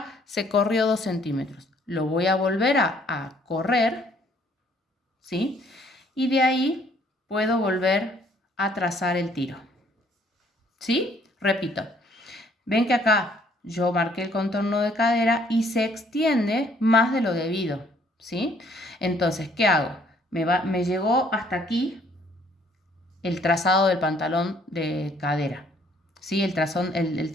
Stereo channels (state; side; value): normal; both; correlation 0.63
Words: se corrió 2 centímetros. Lo voy a volver a correr, ¿sí? Y de ahí puedo volver a trazar el tiro, ¿sí? Repito, ven que acá yo marqué el contorno de cadera y se extiende más de lo debido, ¿sí? Entonces, ¿qué hago? Me llegó hasta aquí el trazado del pantalón de cadera, ¿sí? El